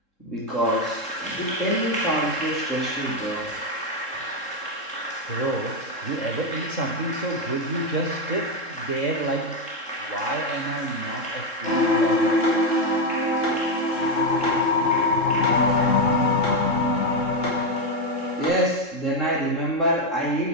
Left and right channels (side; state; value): right; late; 3.7 ms